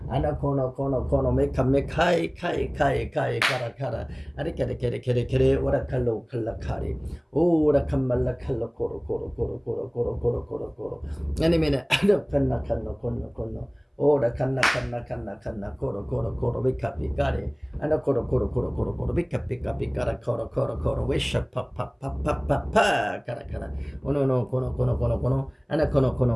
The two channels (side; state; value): both; identical; correlation 1.00